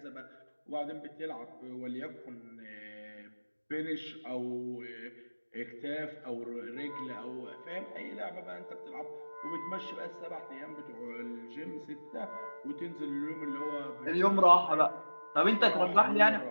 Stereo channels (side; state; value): both; inverted; correlation -1.00